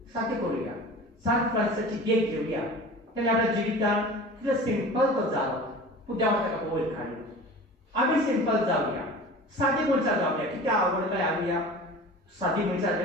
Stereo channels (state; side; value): normal; both; correlation 0.38